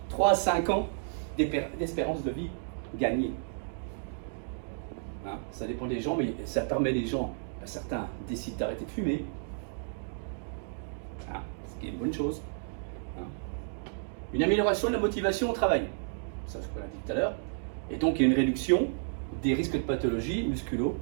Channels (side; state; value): left; silent; digital silence